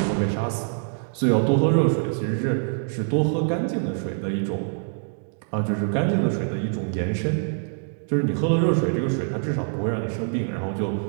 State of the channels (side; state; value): left; silent; digital silence